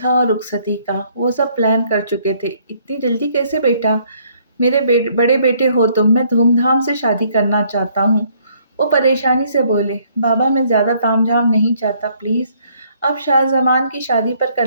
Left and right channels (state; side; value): inverted; both; correlation -0.65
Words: اور رخصتی کا۔ وہ سب پلان کر چکے تھے۔ اتنی جلدی کیسے بیٹا؟ میرے بڑے بیٹے ہو تم، میں دھوم دھام سے شادی کرنا چاہتا ہوں۔ وہ پریشانی سے بولے، بابا میں زیادہ تام جھام نہیں چاہتا، پلیز اب شاہ زمان کی شادی پر کر